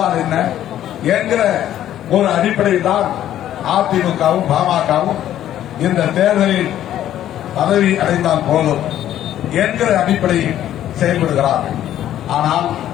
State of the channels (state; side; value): quieter; right; 11.9 dB